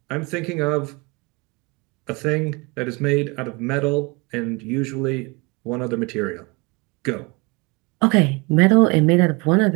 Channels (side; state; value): left; quieter; 27.8 dB